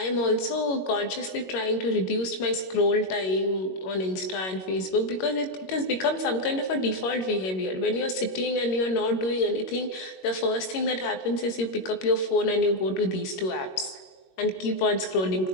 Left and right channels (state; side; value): late; right; 21 ms